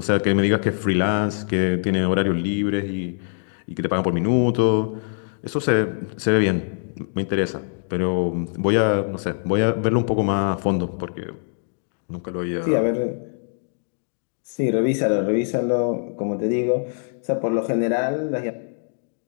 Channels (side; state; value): right; silent; digital silence